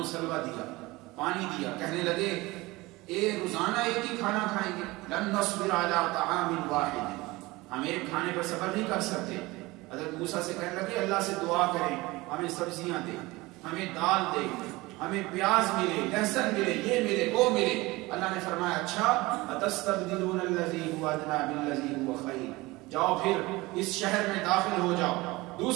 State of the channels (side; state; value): left; quieter; 21.3 dB